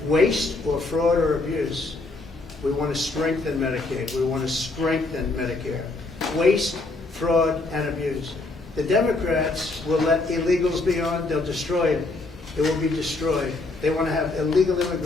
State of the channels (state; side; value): quieter; right; 3.2 dB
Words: waste or fraud or abuse, we want to strengthen Medicaid. We want to strengthen Medicare. Waste, fraud, and abuse. The Democrats will let illegals be on. They'll destroy it. It will be destroyed. They want to have illegal